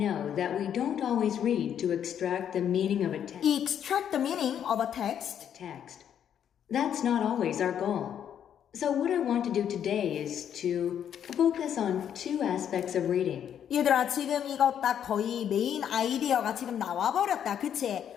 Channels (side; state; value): right; quieter; 9.2 dB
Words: that we don't always read to extract the meaning of a extract the meaning of a text. text. That's not always our goal. So what I want to do today is to focus on two aspects of reading. 얘들아 지금 이거 딱 거의 메인 아이디어가 지금 나와버렸다.